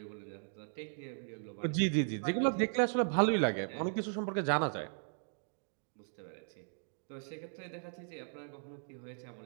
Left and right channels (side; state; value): left; silent; digital silence